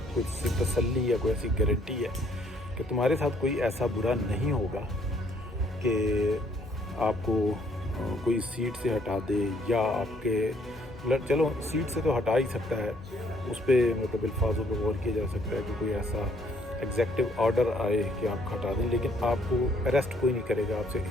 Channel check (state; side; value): normal; both; correlation 0.65